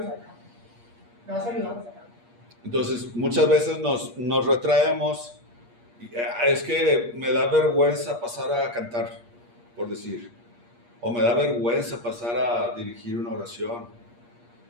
sacar, te vas ayudando a sacar. Entonces, muchas veces nos retraemos. Es que me da vergüenza pasar a cantar, por decir, o me da vergüenza pasar a dirigir una oración.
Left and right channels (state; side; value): late; left; 8.5 ms